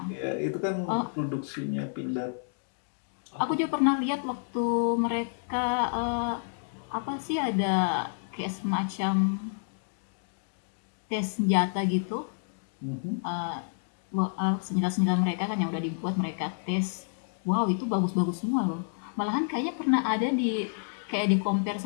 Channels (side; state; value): right; silent; digital silence